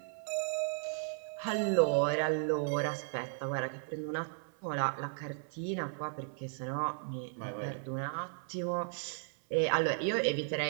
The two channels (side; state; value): left; silent; 54 dB below the other